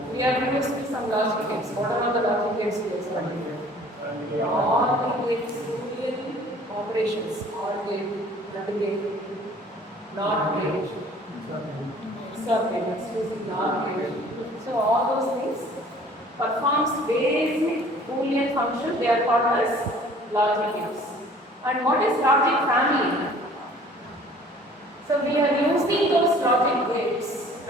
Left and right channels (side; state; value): both; normal; correlation 0.51